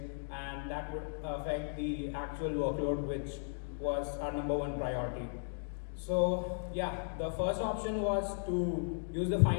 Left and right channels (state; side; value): silent; right; digital silence